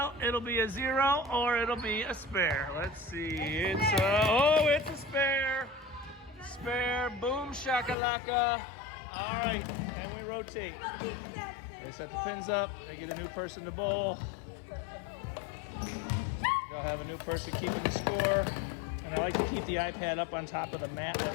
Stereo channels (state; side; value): drops out; right; at 8.0 s